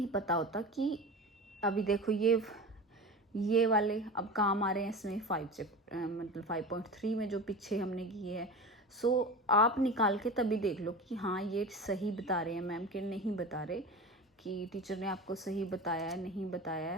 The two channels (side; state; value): both; normal; correlation 0.30